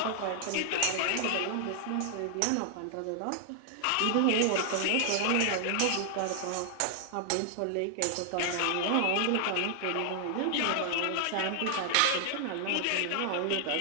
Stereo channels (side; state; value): both; different; correlation 0.00